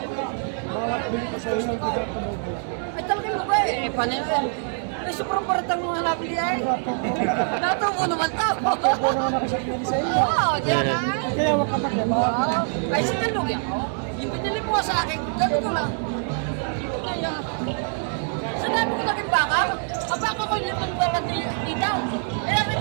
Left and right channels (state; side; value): silent; left; 56 dB below the other